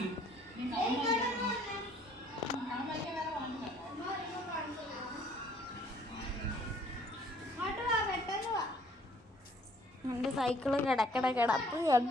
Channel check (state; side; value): normal; both; correlation 0.59